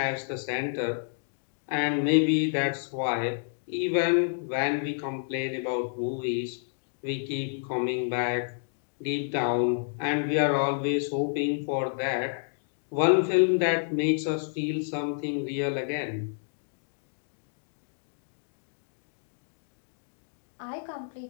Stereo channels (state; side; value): silent; right; digital silence